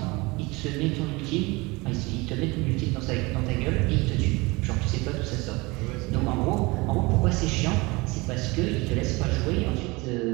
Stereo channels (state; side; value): quieter; left; 24.4 dB